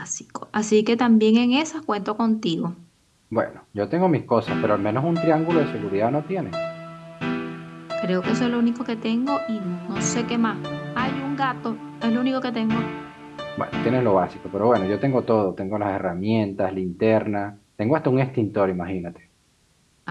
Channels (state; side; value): identical; both; correlation 1.00